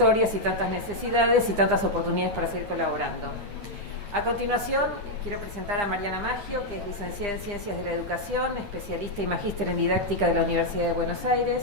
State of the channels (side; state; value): left; late; 9.9 ms